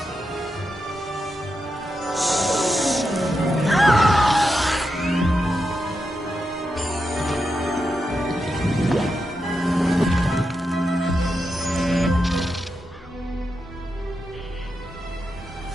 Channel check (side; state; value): both; normal; correlation 0.87